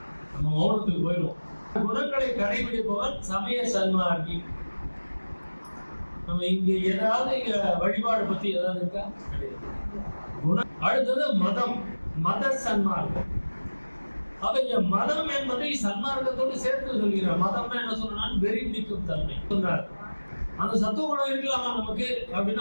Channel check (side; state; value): both; inverted; correlation -1.00